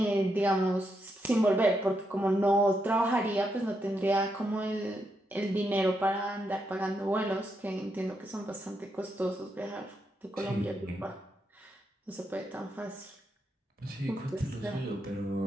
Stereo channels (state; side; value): normal; both; correlation 0.81